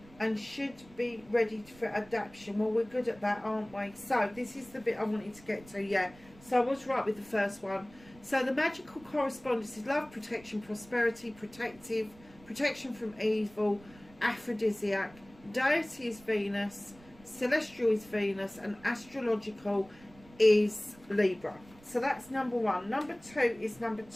and should be ready for adaptation. Well, we're good at that, aren't we? So this is the bit I wanted to get to. Yeah, so I was right with the first one. So the magical correspondence is love, protection, prosperity, protection from evil, aphrodisiac. Deity is Venus, celestial is Venus, and astrological is Libra. So that's number 1. Number 2 is number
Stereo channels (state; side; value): noise; right; rumble, 24 dB below the sound